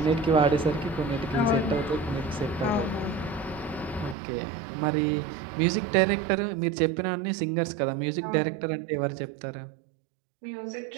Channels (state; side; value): drops out; left; at 4.2 s